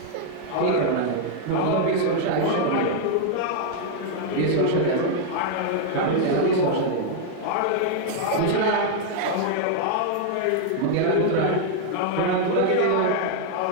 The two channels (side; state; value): both; different; correlation 0.00